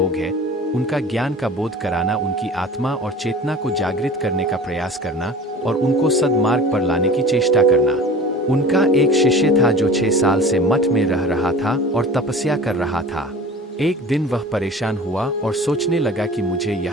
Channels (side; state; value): both; normal; correlation 0.40